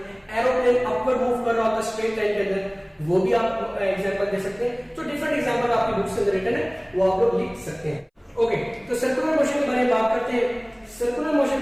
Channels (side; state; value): both; identical; correlation 1.00